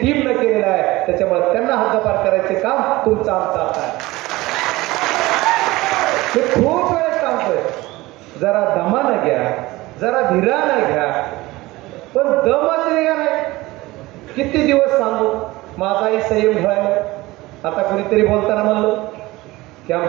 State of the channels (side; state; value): left; quieter; 19.8 dB